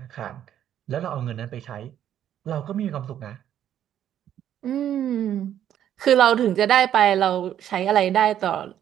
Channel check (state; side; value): quieter; left; 10.5 dB